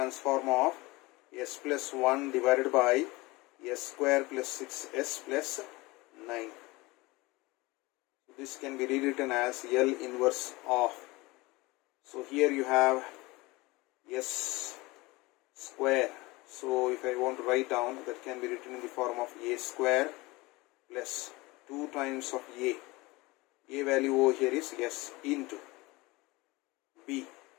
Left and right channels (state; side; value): quieter; right; 22.4 dB